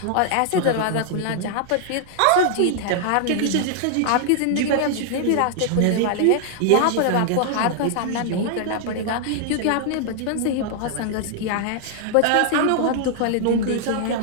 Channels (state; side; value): different; both; correlation -0.01